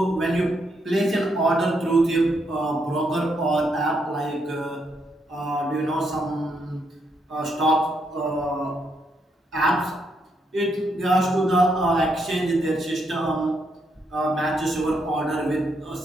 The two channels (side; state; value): both; normal; correlation 0.77